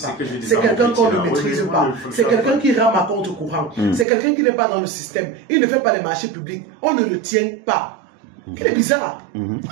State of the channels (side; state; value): left; drops out; at 4.0 s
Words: C'est quelqu'un qu'on ne maîtrise pas. C'est quelqu'un qui rame à contre-courant. C'est quelqu'un qui n'est pas dans le système. Il ne fait pas les marchés publics. On ne le tient pas. Il est bizarre.